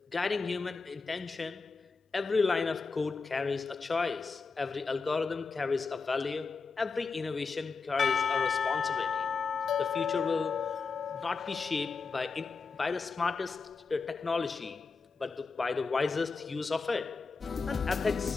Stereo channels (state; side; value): quieter; right; 4.6 dB